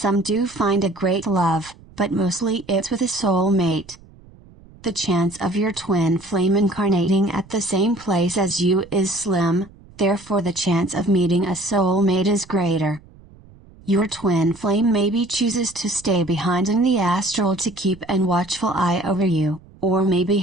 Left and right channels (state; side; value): noise; right; rumble, 24 dB below the sound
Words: do find a great love, but mostly it's with a soulmate. The chance of your twin flame incarnating at the same place as you is slim, therefore the chance of meeting a soulmate is greater. Your twin flame maybe chooses to stay behind in the astral to keep an watchful eye over you, or maybe